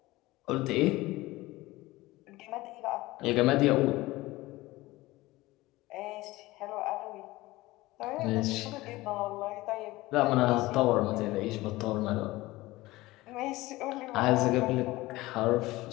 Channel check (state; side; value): quieter; right; 19.3 dB